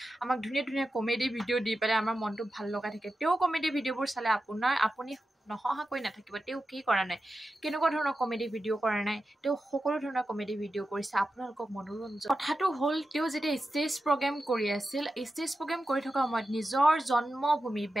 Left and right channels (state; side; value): normal; both; correlation 0.91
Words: আমাক ধুনীয়া কমেডি ভিডিঅ' দি পেলাই আমাৰ মনটো ভাল লগাই থাকে। তেওঁ কমেডি ভিডিঅ'বোৰ চালে আপুনি নহহাকৈ নাথাকিব। তেওঁ কি কৰা নাই, কেনেকুৱা ধৰণৰ কমেডি ভিডিঅ' কৰা নাই, তেওঁ সকলো ধৰণৰ কমেডি ভিডিঅ' কৰিছে আপোনালোকক মনোৰঞ্জন। কথাটো হ'ল, তেওঁ যেতিয়া ষ্টেজ প্ৰগ্ৰেম কৰি আছিল, ষ্টেজ প্ৰগ্ৰেম কৰি থকা সময়ত নিজৰ জন্মভূমি